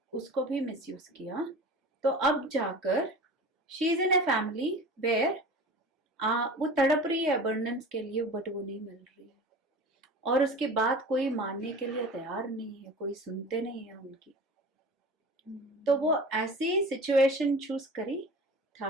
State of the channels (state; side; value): normal; both; correlation 0.37